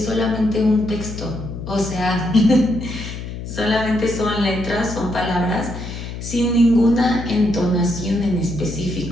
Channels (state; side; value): noise; left; hum, 8 dB below the sound